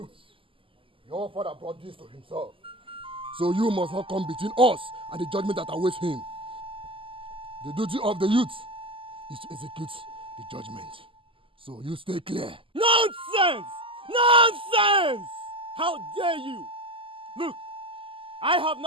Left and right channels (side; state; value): left; late; 0.25 ms